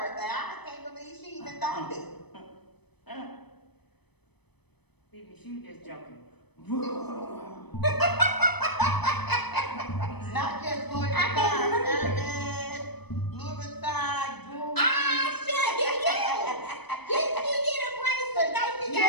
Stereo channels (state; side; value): late; right; 0.98 ms